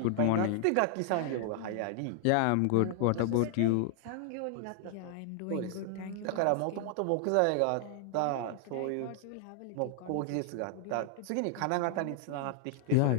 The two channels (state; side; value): different; both; correlation 0.00